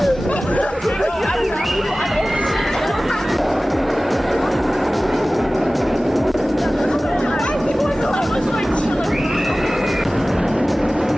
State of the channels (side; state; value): both; normal; correlation 0.97